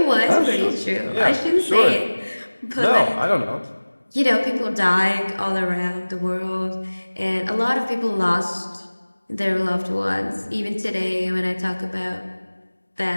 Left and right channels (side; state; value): both; inverted; correlation -1.00